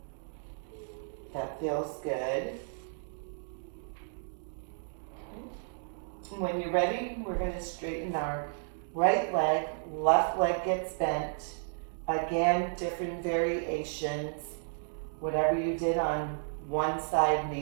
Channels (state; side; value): silent; left; digital silence